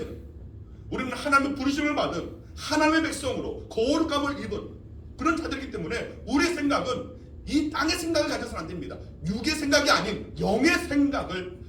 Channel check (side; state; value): both; identical; correlation 1.00